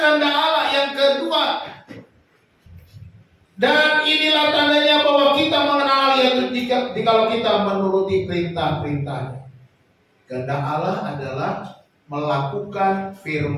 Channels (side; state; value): both; identical; correlation 1.00